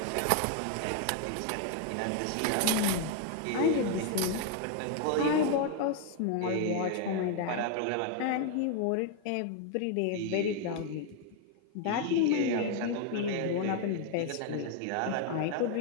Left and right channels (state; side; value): different; both; correlation 0.01